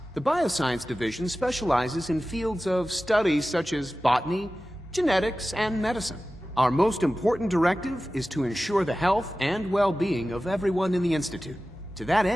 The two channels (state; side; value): normal; both; correlation 0.95